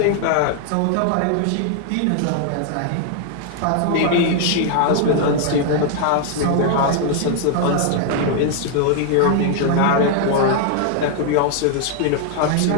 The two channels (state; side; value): different; both; correlation 0.00